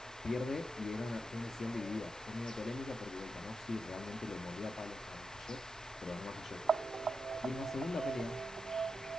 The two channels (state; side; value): noise; right; hum, 24 dB below the sound